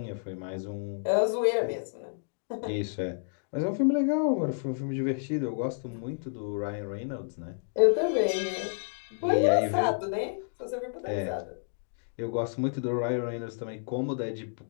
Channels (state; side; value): silent; right; digital silence